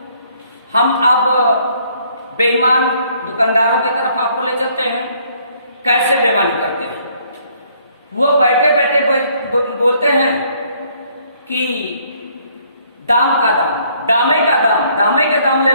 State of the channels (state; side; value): inverted; both; correlation -0.64